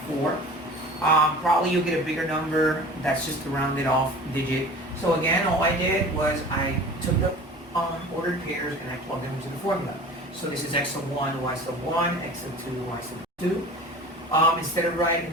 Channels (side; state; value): both; normal; correlation 0.40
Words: Probably you'll get a bigger number. That's just a rounded off digit. So again, all I did was I took the ordered pairs and I plugged them into the formula. So this is x sub 1, y sub 1, x sub 2, y sub 2. Instead of